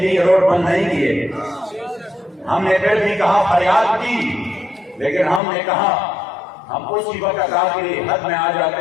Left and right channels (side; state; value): right; drops out; at 5.4 s